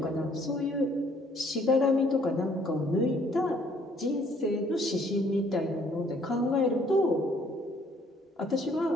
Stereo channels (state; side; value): normal; both; correlation 0.62